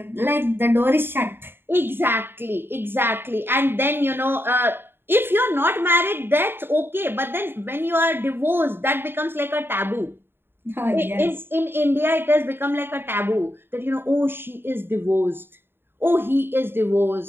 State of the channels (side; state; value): left; late; 0.11 ms